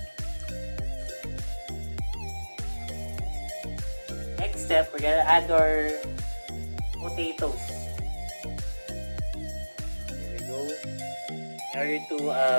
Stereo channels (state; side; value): inverted; both; correlation -1.00